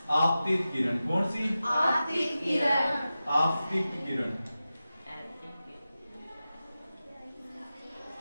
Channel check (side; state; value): both; inverted; correlation -0.93